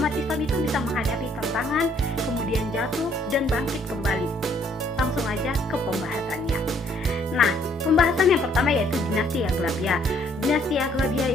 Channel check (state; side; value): normal; both; correlation 0.65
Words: Islam itu bisa menghadapi tantangan, kemudian jatuh dan bangkit kembali. Langsung aja ke pembahasannya. Nah, pembahasan yang pertama yaitu dinasti Aghlabiyah. Dinasti